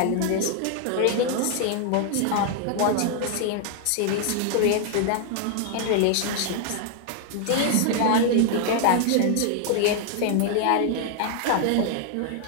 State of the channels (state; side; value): different; both; correlation 0.00